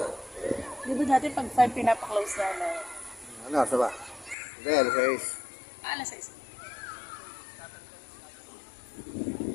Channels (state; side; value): drops out; right; at 4.4 s